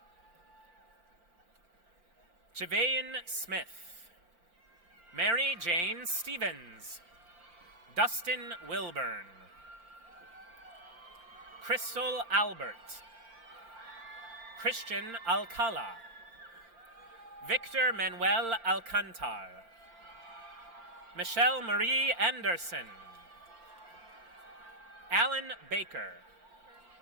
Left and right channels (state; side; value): late; left; 4.4 ms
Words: Javayan Smith. Mary Jane Stevens. Dustin Wilburn. Crystal Albert. Christian Alcala. Victor Manuel Alcantar. Michelle Marie Anderson. Alan Baker.